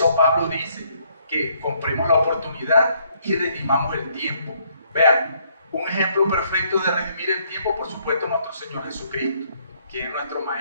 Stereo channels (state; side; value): inverted; both; correlation -0.68